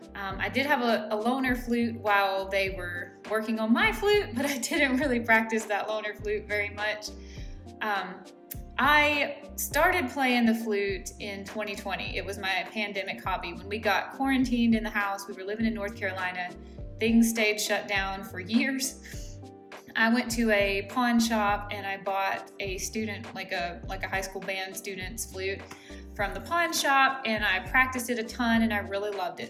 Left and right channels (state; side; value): identical; both; correlation 1.00